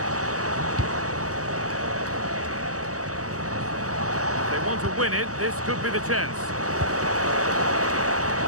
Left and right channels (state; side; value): late; left; 0.66 ms